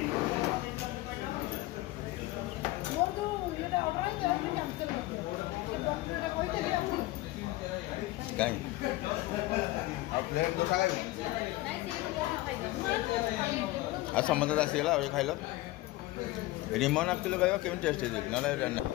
आ समुद्र आसीगला खाइल रिमन आसुल भाई केमी टेस्ट ना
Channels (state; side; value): quieter; right; 18.5 dB